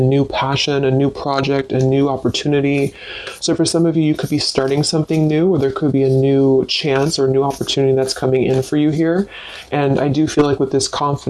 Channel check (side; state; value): both; identical; correlation 1.00